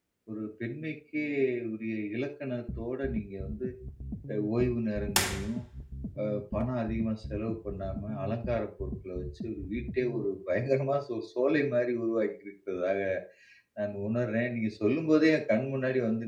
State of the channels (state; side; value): identical; both; correlation 1.00